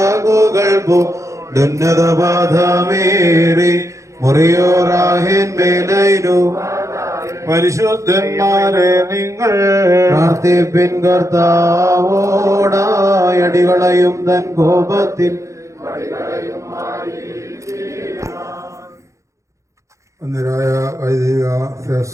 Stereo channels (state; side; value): late; left; 0.15 ms